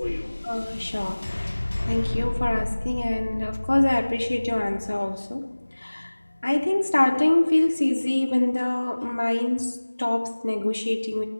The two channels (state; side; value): inverted; both; correlation -1.00